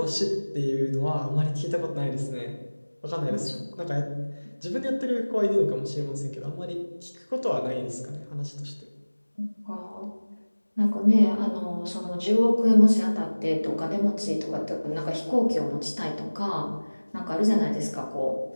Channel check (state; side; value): inverted; both; correlation -1.00